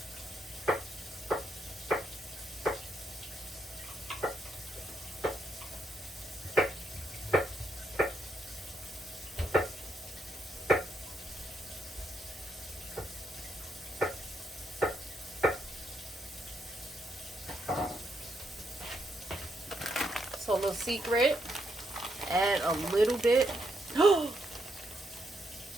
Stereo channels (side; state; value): both; normal; correlation 0.78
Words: So a little secret, add a little bit.